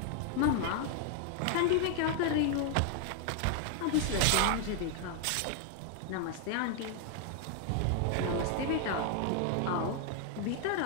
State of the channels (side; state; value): both; different; correlation 0.00